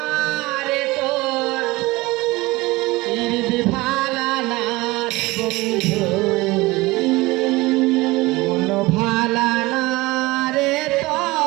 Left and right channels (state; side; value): quieter; left; 20.9 dB